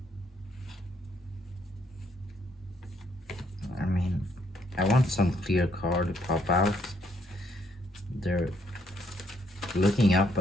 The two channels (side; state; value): both; normal; correlation 0.70